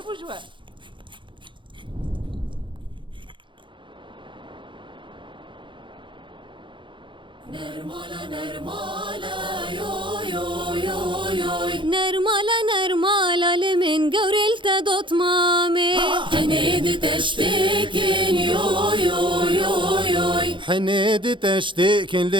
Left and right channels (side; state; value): left; late; 0.23 ms